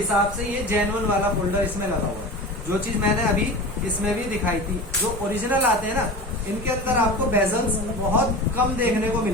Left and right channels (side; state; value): both; normal; correlation 0.32